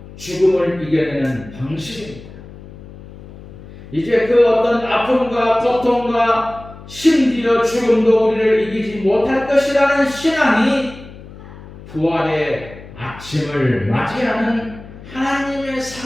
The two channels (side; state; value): left; noise; hum, 17 dB below the sound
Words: 죽음을 이겨내는 방식입니다. 이제 그 어떤 아픔과 고통과 심지어 죽음도 우리를 이기지 못할 것이라는 신앙이 부활의 아침을 맞이하는 하나님의